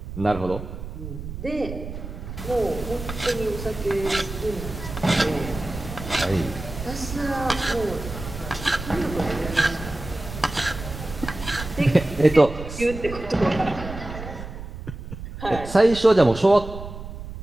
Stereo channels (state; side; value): noise; right; rumble, 10 dB below the sound